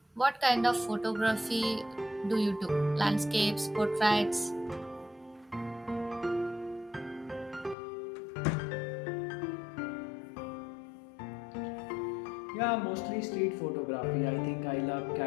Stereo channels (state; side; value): drops out; right; at 7.8 s